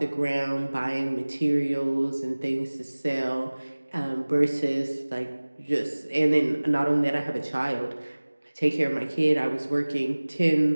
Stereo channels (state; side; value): inverted; both; correlation -1.00